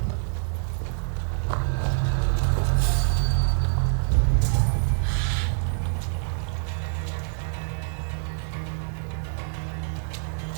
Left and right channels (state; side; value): silent; left; 57 dB below the other